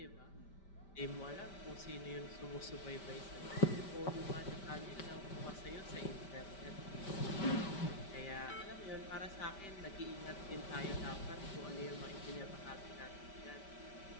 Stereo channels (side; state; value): right; late; 5.1 ms